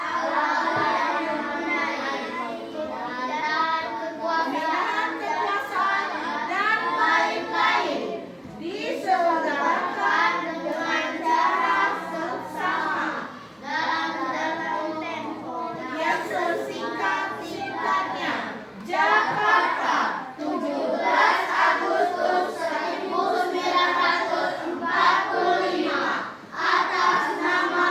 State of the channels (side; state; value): both; identical; correlation 1.00